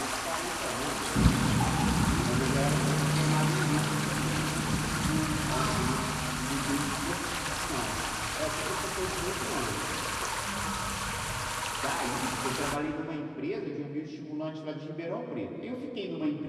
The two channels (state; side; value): identical; both; correlation 1.00